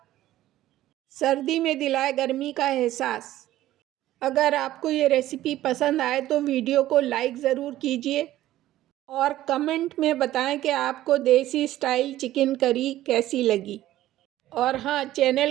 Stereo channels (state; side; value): quieter; left; 14.4 dB